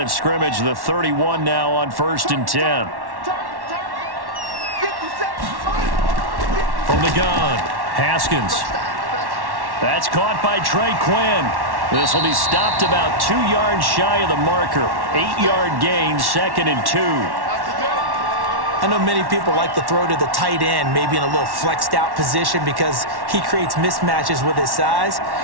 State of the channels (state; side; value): late; left; 1.1 ms